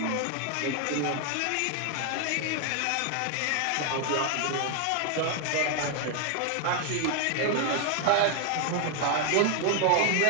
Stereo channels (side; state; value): both; different; correlation 0.01